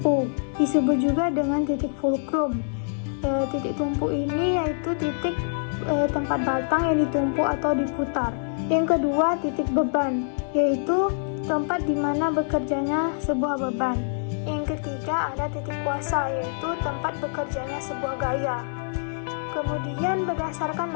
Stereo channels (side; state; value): right; silent; digital silence